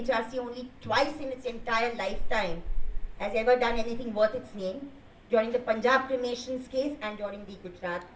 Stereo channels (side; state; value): both; identical; correlation 1.00